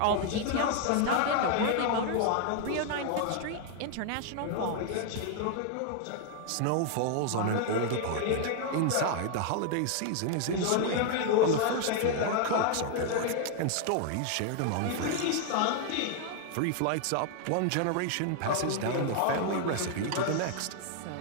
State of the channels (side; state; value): both; different; correlation 0.00